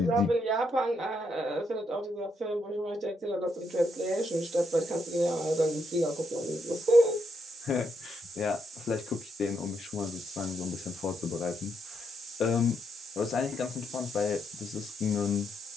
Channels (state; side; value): normal; both; correlation 0.78